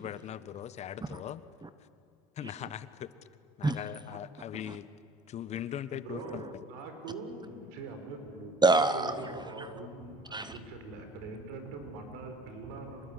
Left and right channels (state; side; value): normal; both; correlation 0.49